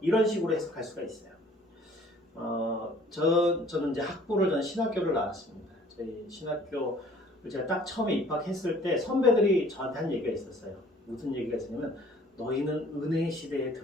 식으로 해석할 수가 있어요. 저는 이제 저는 신학교를 나왔습니다. 저희 신학교를 제가 딱 처음에 입학했을 때 선배들이 저한테 한 얘기가 있었어요. 무슨 얘기가 있었냐면 너희는 은혜의 시대에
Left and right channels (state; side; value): normal; both; correlation 0.54